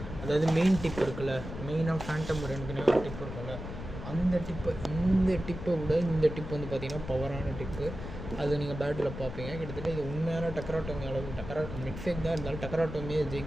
அதாவது மெயின் டிப் இருக்குல்ல, மெயினாக ஃபேண்டம் ரெண்டுக்குனே ஒரு டிப் இருக்குல்ல, அந்த டிப்பு, இந்த டிப்பை விட இந்த டிப் வந்து பார்த்திங்கன்னா பவரான டிப்பு. அது நீங்கள் பேட்டில் பார்ப்பீங்க. கிட்டத்தட்ட இது உண்மையான டக்கராட்டோமி அளவுக்கு, மிட்ஃபேக் தான் இருந்தாலும் டக்கராட்டோமியை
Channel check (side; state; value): left; noise; rumble, 9 dB below the sound